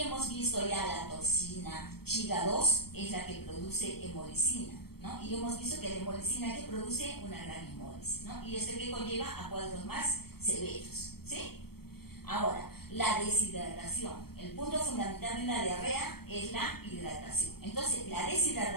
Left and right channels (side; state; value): right; late; 0.95 ms